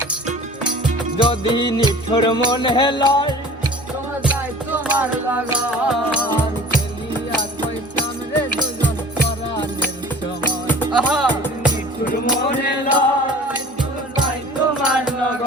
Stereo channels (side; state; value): both; normal; correlation 0.43